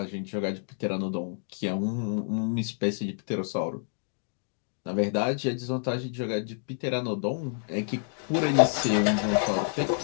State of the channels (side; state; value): right; silent; digital silence